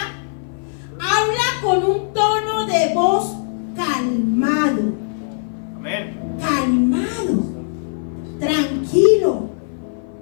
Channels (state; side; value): silent; right; 57 dB below the other